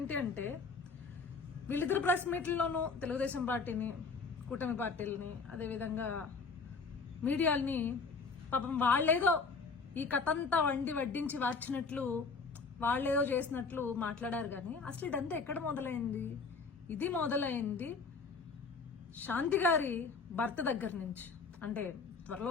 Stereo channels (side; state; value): right; quieter; 4.6 dB